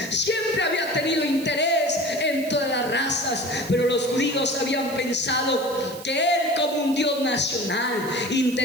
Siempre había tenido interés en todas las razas, pero los judíos habían pensado que Él, como un Dios nacional,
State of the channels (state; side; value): noise; right; hiss, 16 dB below the sound